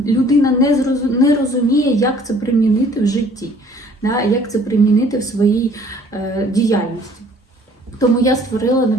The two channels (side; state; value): both; normal; correlation 0.56